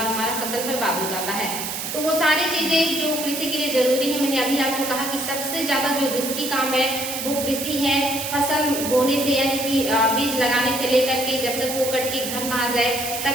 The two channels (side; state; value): right; noise; hiss, 5 dB below the sound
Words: हमारा फसल बर्बाद हो जाता है। तो वो सारी चीजें जो कृषि के लिए जरूरी है, मैंने अभी आपको कहा कि सबसे ज्यादा जो रिस्की काम है वो कृषि है। फसल बोने से यानी कि बीज लगाने से लेकर के जब तक वो कट के घर ना आ जाए